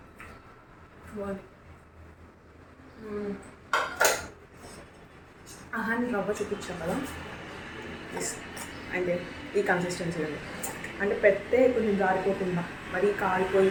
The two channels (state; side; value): identical; both; correlation 1.00